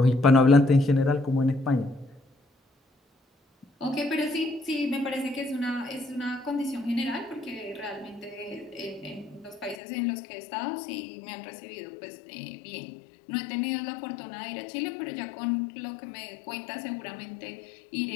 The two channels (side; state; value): right; drops out; at 9.8 s